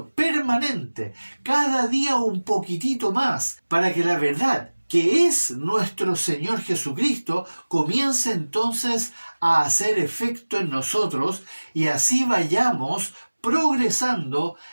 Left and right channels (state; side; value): inverted; both; correlation -1.00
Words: permanente, cada día un poquitito más, para que la verdad, que es nuestro Señor Jesucristo, comience entonces a hacer efecto en nosotros y así vayamos progresando